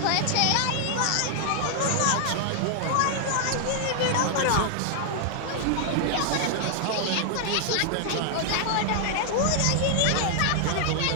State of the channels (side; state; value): both; different; correlation 0.00